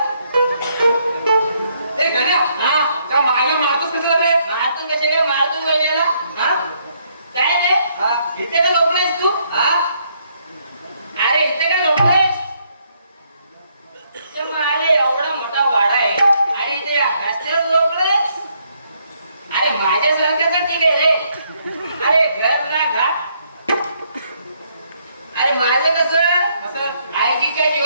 ए गण्या, त्या मायला मारतोस कशाला रे? मारतून कसे काय मारतून वहिनीला? हा? काय रे इथे का झोपलायस तू? हा? अरे इथे का झोपलायस? तर मग अरे एवढा मोठा वाडा आहे आणि इथे या रस्त्यावर झोपलायस? अरे माझ्यासारखं ठीक आहे रे. अरे घर ना घाट. अरे माझं कसं आईजीच्या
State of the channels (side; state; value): both; inverted; correlation -0.72